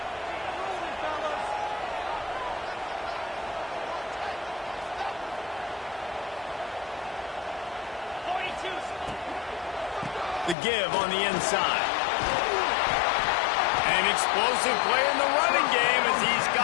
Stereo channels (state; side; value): drops out; right; at 10.6 s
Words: The give on the inside. An explosive play in the running game as he's